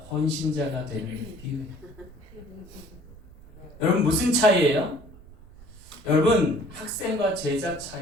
헌신자가 되는 기회. 여러분 무슨 차이예요? 여러분 학생과 제자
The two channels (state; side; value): noise; right; rumble, 20 dB below the sound